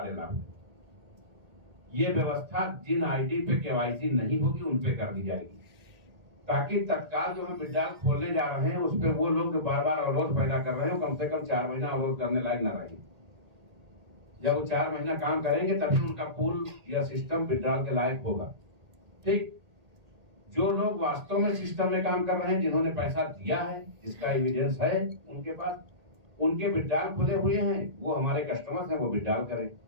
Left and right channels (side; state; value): left; late; 1.8 ms